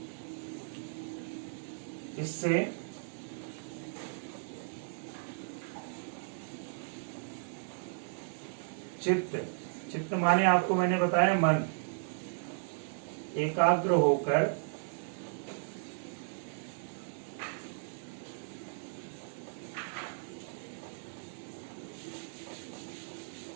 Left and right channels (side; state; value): left; silent; 54 dB below the other